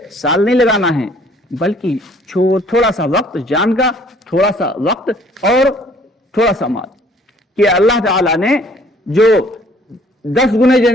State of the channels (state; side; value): normal; both; correlation 0.57